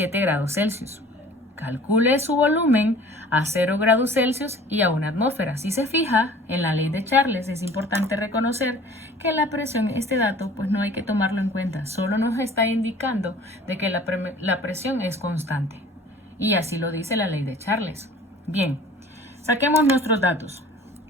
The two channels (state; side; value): normal; both; correlation 0.47